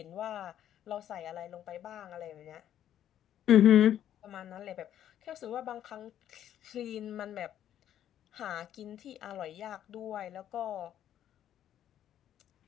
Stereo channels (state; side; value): quieter; right; 10.9 dB